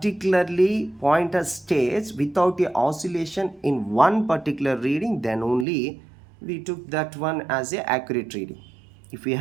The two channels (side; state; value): left; drops out; at 5.7 s